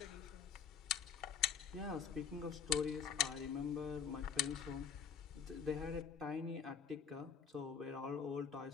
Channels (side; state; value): right; quieter; 6.9 dB